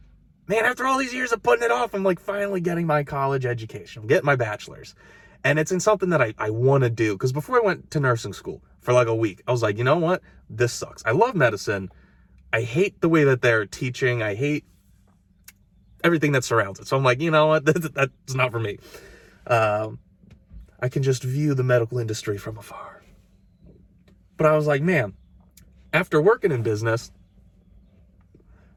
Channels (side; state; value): both; identical; correlation 1.00